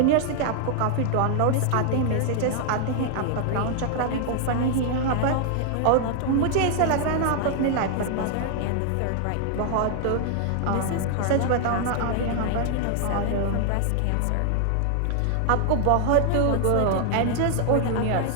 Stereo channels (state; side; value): different; both; correlation 0.00